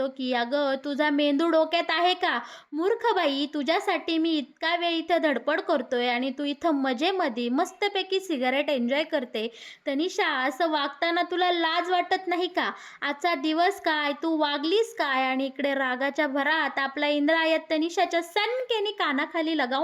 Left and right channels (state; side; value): identical; both; correlation 1.00